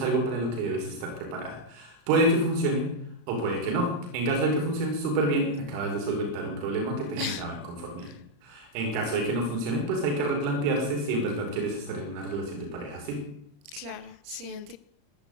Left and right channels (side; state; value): left; late; 34 ms